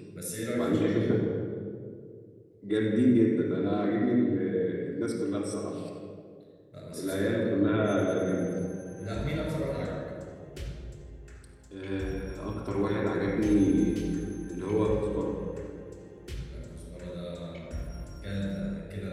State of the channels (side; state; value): both; identical; correlation 1.00